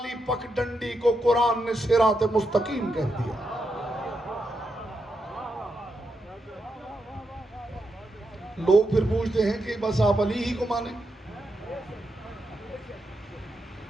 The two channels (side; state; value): both; normal; correlation 0.84